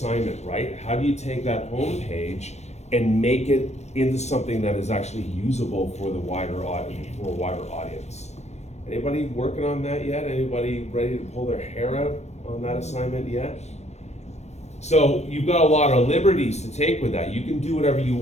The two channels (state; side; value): late; right; 0.32 ms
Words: right? How do you take that homepage and make it into something that is actually usable for the wider audience? Anybody working on that yet? Anybody ready to pull their hair out on that assignment yet? So you've got a lot of liberties to take with that. You can do whatever you